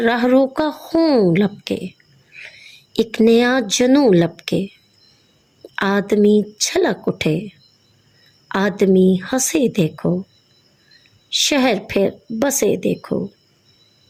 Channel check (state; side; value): identical; both; correlation 1.00